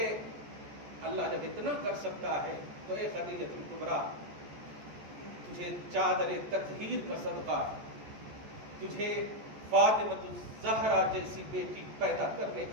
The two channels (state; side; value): late; left; 14 ms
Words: اللہ جب اتنا کر سکتا ہے تو اے خدیجہ الکبریٰ، تجھے چادر تطہیر کا صدقہ، تجھے فاطمۃ الزہرا جیسی بیٹی پیدا کرنے